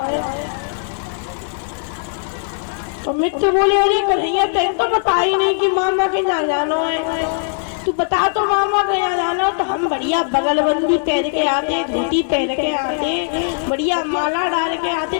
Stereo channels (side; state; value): right; silent; digital silence